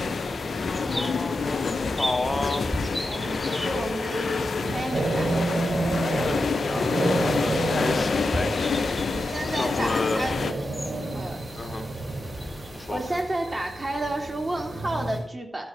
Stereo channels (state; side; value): normal; both; correlation 0.89